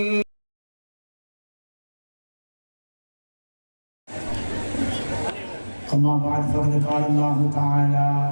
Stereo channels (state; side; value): inverted; both; correlation -1.00